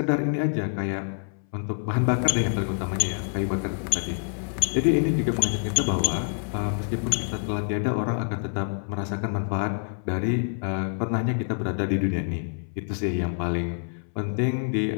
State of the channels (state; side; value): silent; right; 61 dB below the other